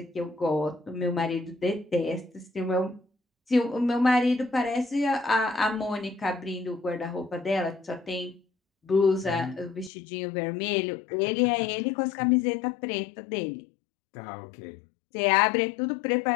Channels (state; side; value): drops out; right; at 9.9 s